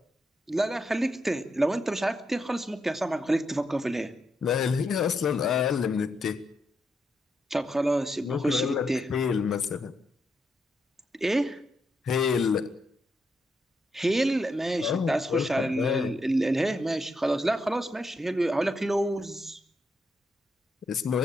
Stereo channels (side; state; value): both; normal; correlation 0.81